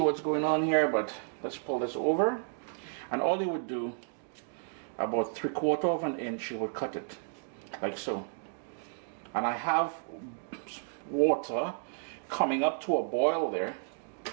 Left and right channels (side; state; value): left; silent; 56 dB below the other